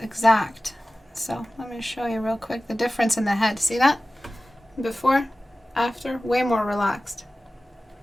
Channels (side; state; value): both; normal; correlation 0.97